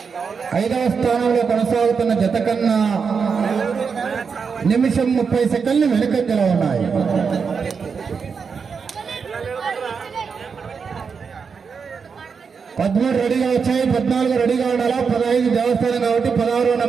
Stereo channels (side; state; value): left; quieter; 5.8 dB